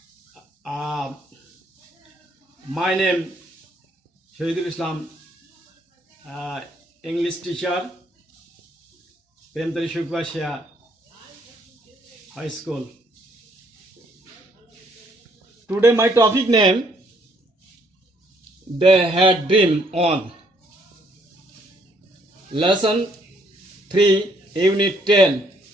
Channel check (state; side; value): normal; both; correlation 0.68